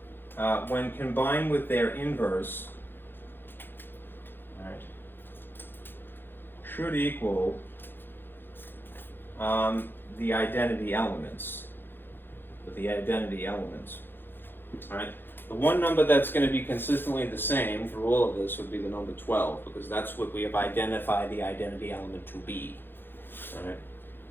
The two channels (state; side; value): late; right; 0.10 ms